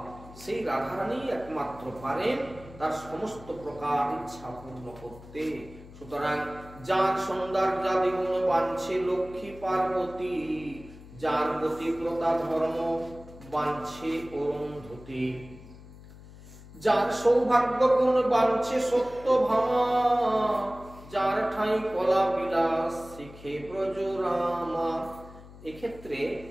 সেই রাধারানী একমাত্র পারেন তার সমস্ত প্রকার ইচ্ছা পূর্ণ করতে। সুতরাং যার সৌন্দর্যাদি গুণ বাঞ্ছে লক্ষ্মী পার্বতী, যার গতিব্রতা ধর্ম বাঞ্ছে অরুন্ধতী, যার সৌভাগ্য গুণ বাঞ্ছে সত্য ভামা, যার ঠাই কলা বিলাস শিখে ব্রজরামা। এক্ষেত্রে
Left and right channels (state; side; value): noise; left; hum, 18 dB below the sound